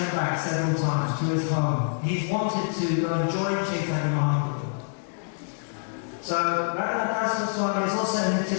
back several times to his home. He's wanted to go and join Chaitanya Mahaprabhu. So Raghunath Das Goswami is also Nitya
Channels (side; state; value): right; silent; digital silence